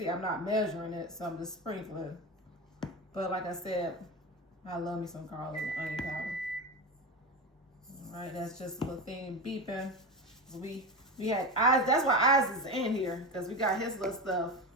I'm not measuring it, so I'm just sprinkling. But like I said, I love me some garlic and onion powder. All right, that's just a little thing beeping. We had eyes. That's why Eyes is in here, because we got his little stuff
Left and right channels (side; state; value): both; normal; correlation 0.22